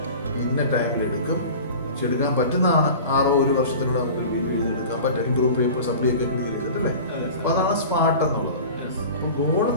ഇന്ന ടൈമിൽ എടുക്കും. എടുക്കാൻ പറ്റുന്നതാണ്. 1 വർഷത്തിലൂടെ നമുക്ക് BBA എഴുതിയെടുക്കാൻ പറ്റും. ഗ്രൂപ്പ് പേപ്പർ സപ്ലൈ ഒക്കെ എഴുതിയെടുത്തിട്ടല്ലേ? അപ്പൊ അതാണ് സ്മാർട്ട് എന്നുള്ളത്. അപ്പൊ ഗോൾ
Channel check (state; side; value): inverted; both; correlation -0.37